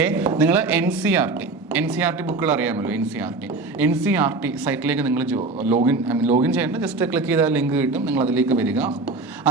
നിങ്ങൾ NCERT ബുക്കുകൾ അറിയാമല്ലോ. NCERT സൈറ്റിലേക്ക് നിങ്ങൾ ലോഗിൻ ചെയ്യേണ്ട, ജസ്റ്റ് ക്ലിക്ക് ചെയ്താൽ ലിങ്ക് കിട്ടും. നിങ്ങൾ അതിലേക്ക് വരിക.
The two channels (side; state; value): left; quieter; 3.5 dB